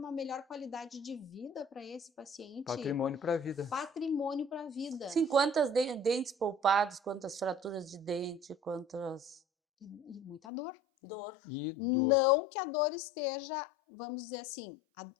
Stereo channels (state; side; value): drops out; right; at 10.4 s